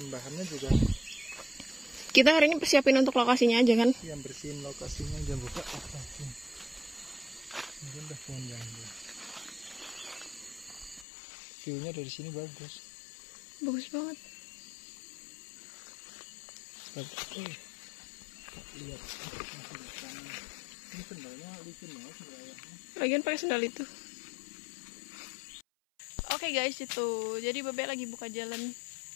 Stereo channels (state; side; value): drops out; right; at 11.1 s